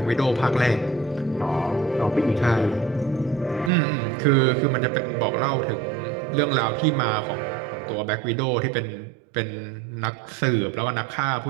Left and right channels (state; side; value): drops out; left; at 3.7 s